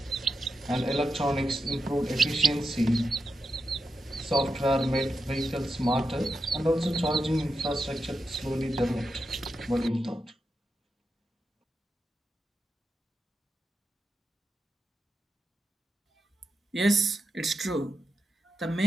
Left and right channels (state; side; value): normal; both; correlation 0.87